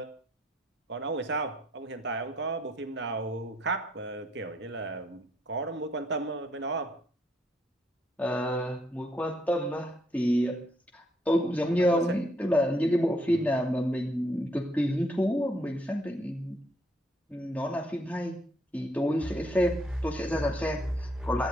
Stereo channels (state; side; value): normal; both; correlation 0.71